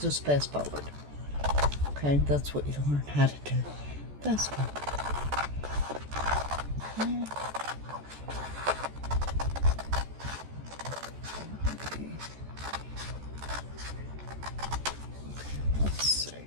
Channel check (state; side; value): late; left; 14 ms